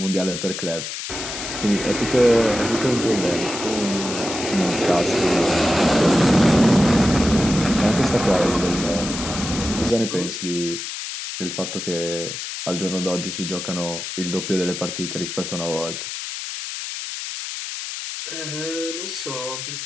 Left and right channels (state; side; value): noise; left; hiss, 7 dB below the sound